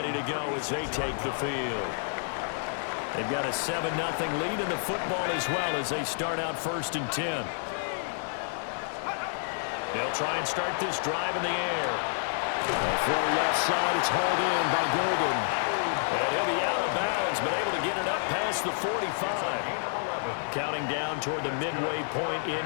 to go as they take the field. They've got a 7-0 lead in the football as well as they start out 1st and 10. They'll try and start this drive in the air. A throw left side. It's hauled in by Golden. And he'll be out of bounds, but able to get it up past the 45. Counting down toward the midway point in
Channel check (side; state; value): right; silent; 58 dB below the other